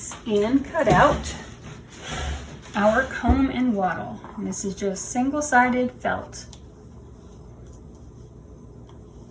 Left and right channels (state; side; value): identical; both; correlation 1.00